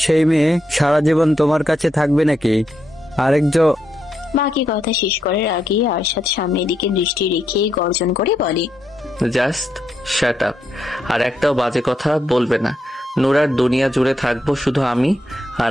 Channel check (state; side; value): normal; both; correlation 0.81